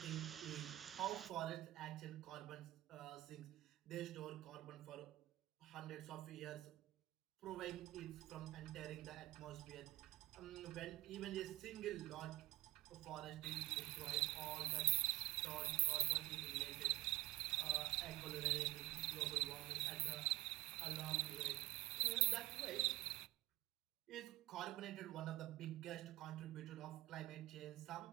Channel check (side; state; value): left; quieter; 17.9 dB